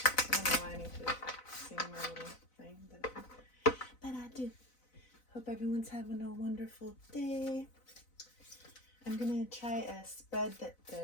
don't know why I need to sing my little thing, but I do. Hope everyone's having a wonderful day. I'm going to try a spread that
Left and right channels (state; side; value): late; right; 4.0 ms